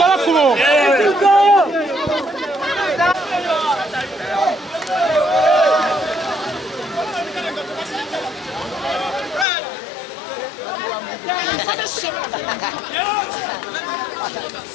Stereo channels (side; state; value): right; drops out; at 9.5 s